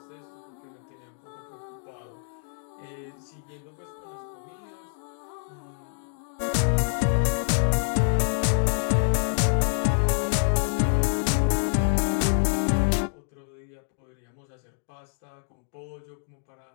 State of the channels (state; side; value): silent; right; digital silence